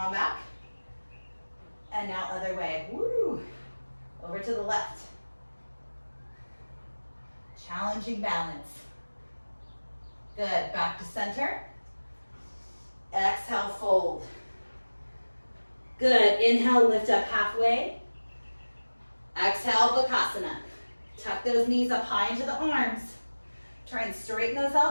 back. And now other way. Woo. Over to the left. Challenging balance. Good. Back to center. Exhale, fold. Good. Inhale, lift up halfway. Exhale, Bakasana. Tuck those knees up high into the arms. Try and straighten those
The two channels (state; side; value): inverted; both; correlation -1.00